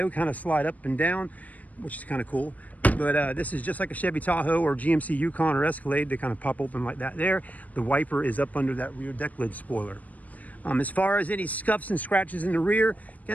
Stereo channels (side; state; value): right; late; 0.073 ms